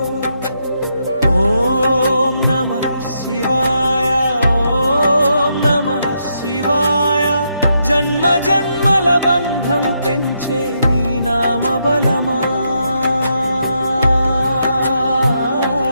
ఓం నమః శివాయ, ఓం నమః శివాయ. జన్మ జన్మల బంధం పెంచే నీ నామ బలమా.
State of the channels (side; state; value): both; inverted; correlation -0.80